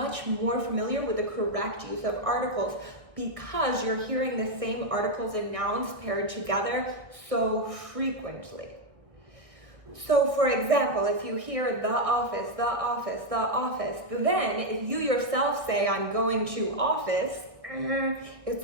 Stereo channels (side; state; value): left; late; 1.6 ms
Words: more familiar with the correct use of articles because you're hearing the same articles and nouns paired together so frequently. So for example, if you hear the office, the office, the office, then if you yourself say, I'm going to office, it's